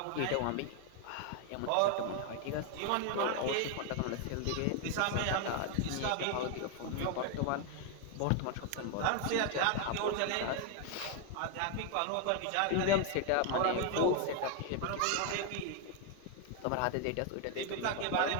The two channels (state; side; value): different; both; correlation 0.01